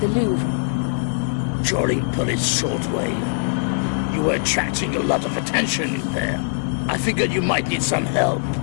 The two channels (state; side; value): silent; right; digital silence